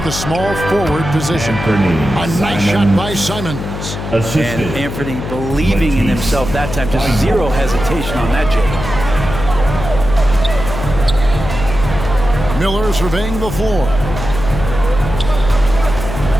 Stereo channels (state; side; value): noise; left; hum, 7 dB below the sound